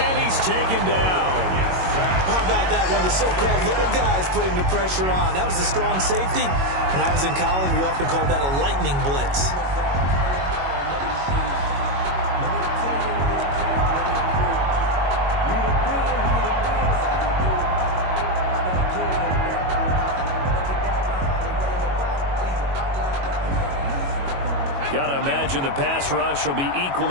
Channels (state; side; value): late; left; 22 ms